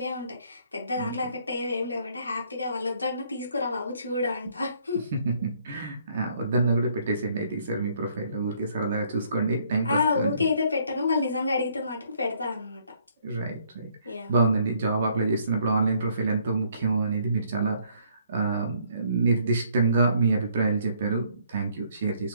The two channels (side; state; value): both; inverted; correlation -0.65